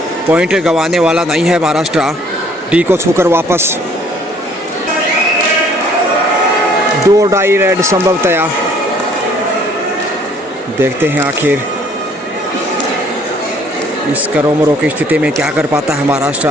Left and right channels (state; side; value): normal; both; correlation 0.59